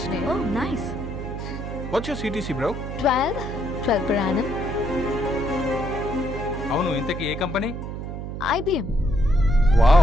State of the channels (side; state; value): right; noise; hum, 6 dB below the sound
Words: Oh nice. What's your CTC bro? 12 per annum. అవును, ఇంతకీ ఏ కంపెనీ? IBM.